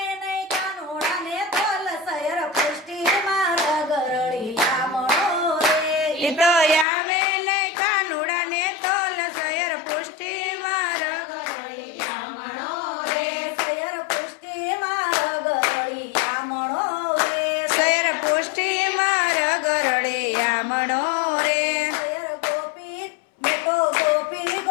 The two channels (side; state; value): right; drops out; at 6.9 s